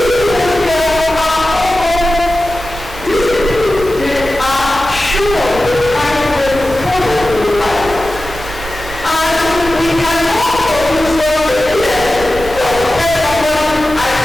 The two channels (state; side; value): noise; right; rumble, 16 dB below the sound